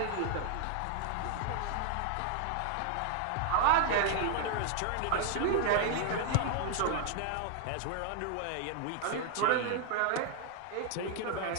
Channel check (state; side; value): different; both; correlation 0.00